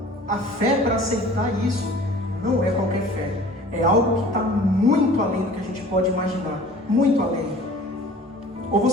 A fé para aceitar isso não é qualquer fé. É algo que está muito além do que a gente pode imaginar. Muito além. Ou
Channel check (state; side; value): normal; both; correlation 0.46